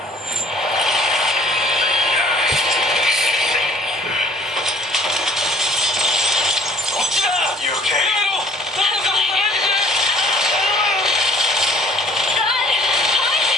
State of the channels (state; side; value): normal; both; correlation 0.54